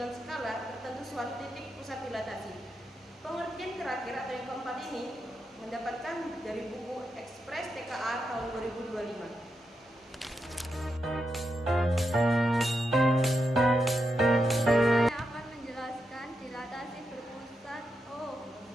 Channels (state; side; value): normal; both; correlation 0.86